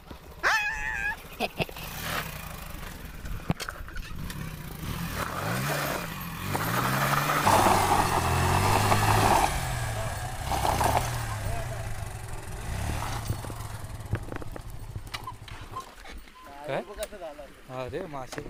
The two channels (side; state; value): both; identical; correlation 1.00